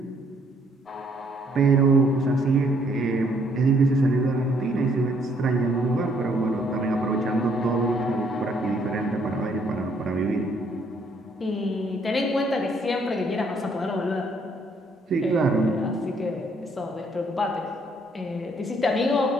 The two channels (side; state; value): both; normal; correlation 0.67